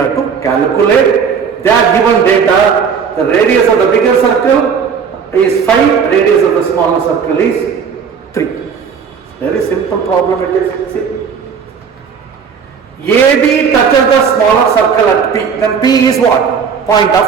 to calculate. They are given data. The radius of the bigger circle is 5. Radius of the smaller circle is 3. Very simple problem it is. See. AB touches the smaller circle at P. Then P is what? Point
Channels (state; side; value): quieter; left; 6.5 dB